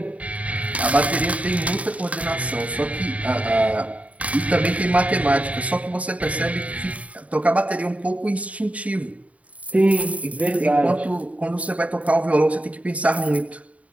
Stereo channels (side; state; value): left; late; 0.067 ms